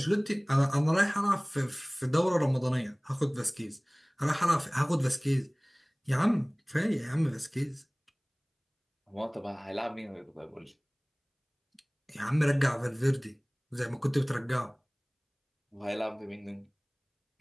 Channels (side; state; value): both; identical; correlation 1.00